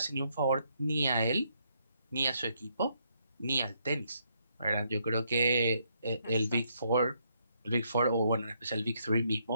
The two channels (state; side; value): inverted; both; correlation -0.74